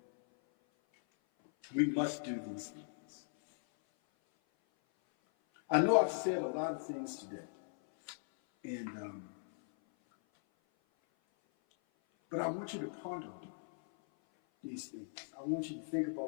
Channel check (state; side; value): silent; right; 52 dB below the other